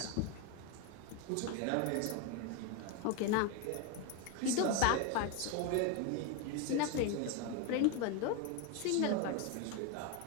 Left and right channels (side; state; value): both; different; correlation 0.02